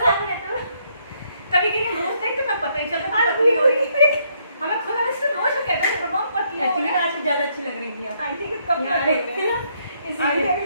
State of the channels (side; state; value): both; inverted; correlation -0.71